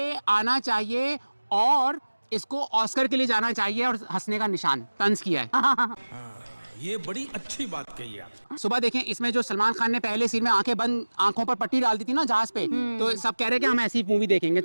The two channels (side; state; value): both; inverted; correlation -1.00